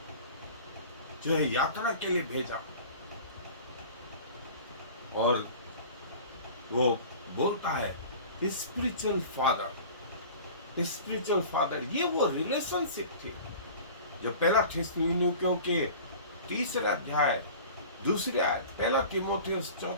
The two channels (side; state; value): both; inverted; correlation -0.41